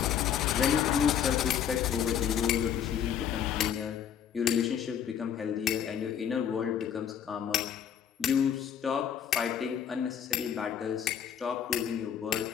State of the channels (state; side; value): quieter; right; 8.8 dB